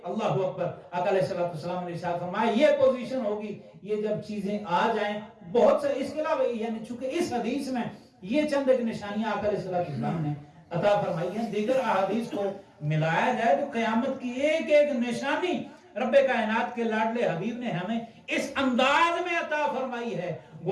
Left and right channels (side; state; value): both; identical; correlation 1.00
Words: اللہ اکبر. آقا علیہ السلام نے ارشاد فرمایا یہ پوزیشن ہوگی یہ جب چیزیں آ جائیں بہت سے. اس کے علاوہ یعنی چونکہ اس حدیث میں یہ چند ایک نشانیاں آقا علیہ السلام نے عطا فرمائی ہیں, دیگر احادیث کو ملایا جائے تو قیامت کی ایک ایک نشانی رب کائنات کے لاڈلے حبیب نے ہمیں اس انداز میں عطا فرمائی ہے